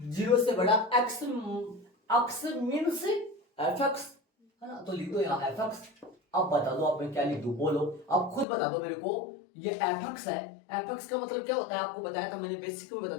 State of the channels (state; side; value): drops out; right; at 8.5 s